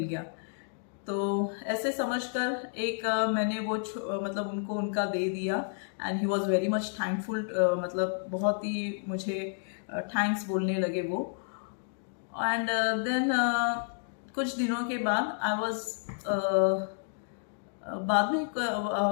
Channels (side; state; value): right; silent; digital silence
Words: गया। तो ऐसे समझकर एक मैंने वो मतलब उनको उनका दे दिया and he was very much thankful, मतलब बहुत ही मुझे थैंक्स बोलने लगे वो। एंड देन कुछ दिनों के बाद आई वॉज बाद में